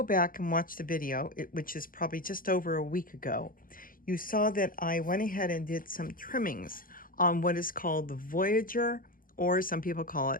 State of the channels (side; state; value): right; late; 0.41 ms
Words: back and watch the video, which is probably just over a week ago, you saw that I went ahead and did some trimmings on what is called the Voyager, or some people call